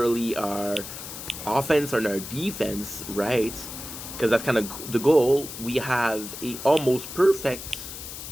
our offense and our defense, right? Because that's kind of the goal. We have a almost perfect.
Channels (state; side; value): noise; left; hiss, 10 dB below the sound